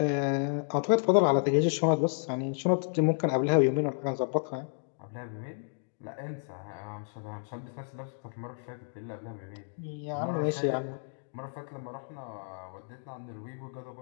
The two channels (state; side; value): silent; right; digital silence